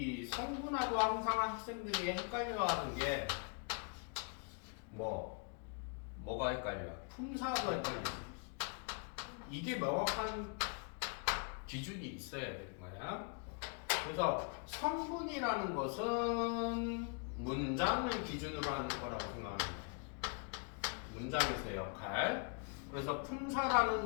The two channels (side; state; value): right; quieter; 39.5 dB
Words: 성분하고 항상 학생들이 헷갈려하는 게 뭐가 헷갈려? 품사하고 헷갈리지. 이게 명확한 기준이 있어야 되는 거야. 그래서 성분이라는 것은 문장을 기준으로 하는 거라고 생각하는 거야. 문장에서의 역할. 그래서